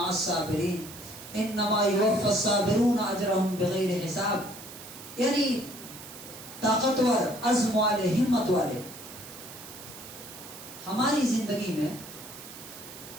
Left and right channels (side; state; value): right; noise; hiss, 14 dB below the sound